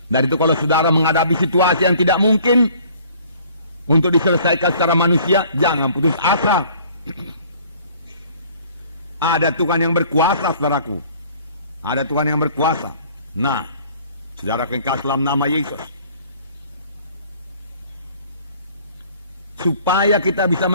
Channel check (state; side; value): inverted; both; correlation -0.54